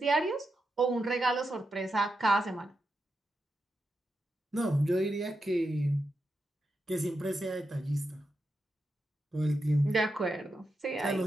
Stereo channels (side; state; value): both; normal; correlation 0.87